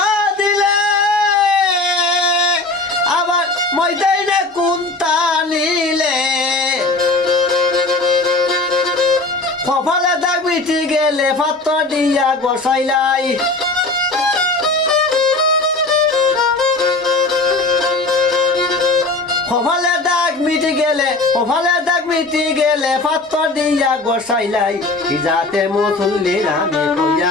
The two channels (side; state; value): right; quieter; 3.2 dB